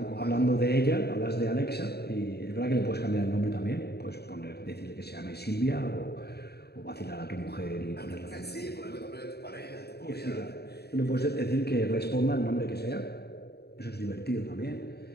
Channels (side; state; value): right; late; 0.47 ms